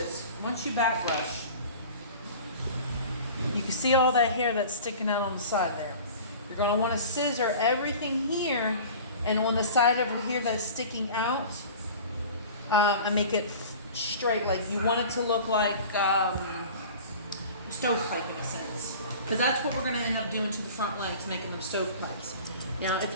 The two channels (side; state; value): both; inverted; correlation -0.40